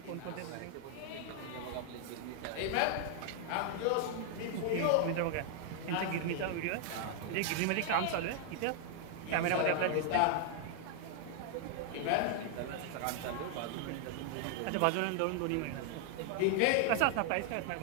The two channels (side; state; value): both; different; correlation 0.00